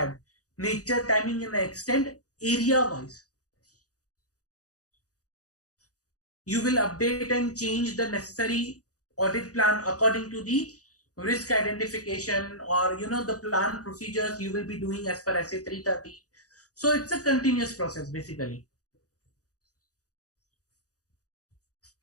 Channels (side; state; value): right; late; 0.67 ms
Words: nature, timing, and extent, area wise. You will update and change the necessary audit plan according to the risk identification or the plan procedures you will be doing as per SA 330. So it's a continuous process basically.